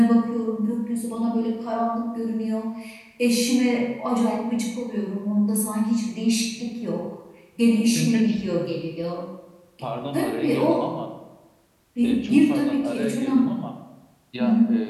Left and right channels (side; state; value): both; identical; correlation 1.00